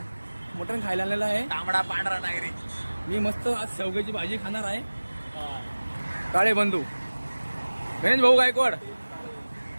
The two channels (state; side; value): inverted; both; correlation -1.00